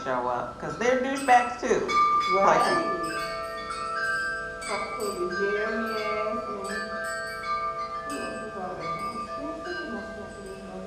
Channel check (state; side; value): identical; both; correlation 1.00